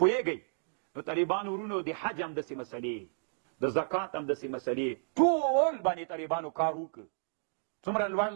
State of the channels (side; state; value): left; silent; digital silence